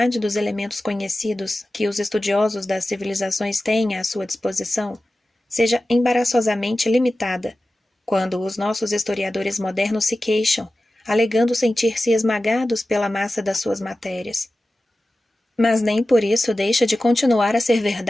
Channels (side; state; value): both; normal; correlation 0.95